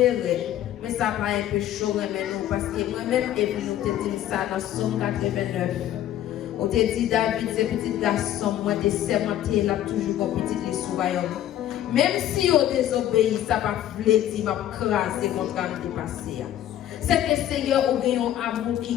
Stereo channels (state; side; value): quieter; right; 12.1 dB